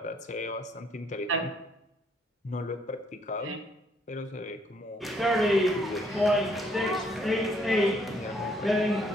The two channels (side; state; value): both; normal; correlation 0.67